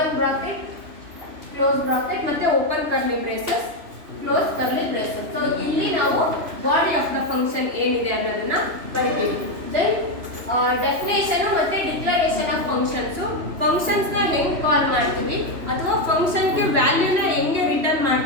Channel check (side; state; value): left; late; 3.0 ms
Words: bracket, close bracket ಮತ್ತೆ open curly braces, close curly braces. So ಇಲ್ಲಿ ನಾವು ಬಾಡಿ ಆಫ್ ದ ಫಂಕ್ಷನ್ ಏನಿದೆ ಅನ್ನೋದನ್ನ ಬರಿತೀವಿ. then ಡೆಫಿನೇಷನ್ ಮತ್ತೆ ಡಿಕ್ಲರೇಷನ್ ಆಫ್ ಫಂಕ್ಷನ್ಸ್, ಫಂಕ್ಷನ್ಸ್ ನ ಹೆಂಗ್ ಕಾಲ್ ಮಾಡ್ತೀವಿ ಅಥವಾ ಫಂಕ್ಷನ್ ಗೆ ವ್ಯಾಲ್ಯೂನ ಹೆಂಗೆ ರಿಟರ್ನ್